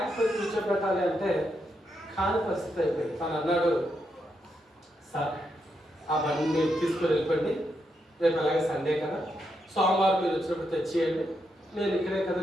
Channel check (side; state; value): both; normal; correlation 0.82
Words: పెట్టి కూర్చోబెట్టాలి అంటే కాని పరిస్థితి అయిపోయింది. తను అన్నాడు, సార్ ఆ బండిని తీసుకొని వెళ్ళిపోండి, రేపు అలాగే సండే కదా, సోమవారం మీరు వచ్చినప్పుడు తెచ్చేయండి, నేను ఇక్కడే